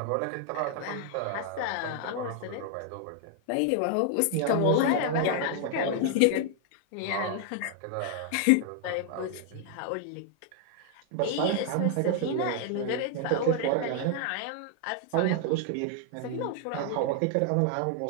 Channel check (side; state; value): both; different; correlation 0.00